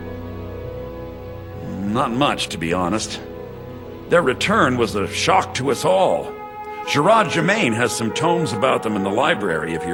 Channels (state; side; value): identical; both; correlation 1.00